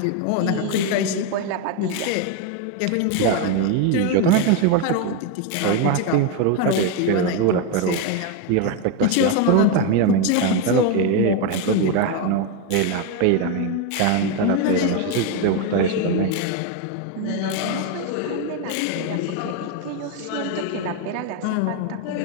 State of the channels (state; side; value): different; both; correlation 0.02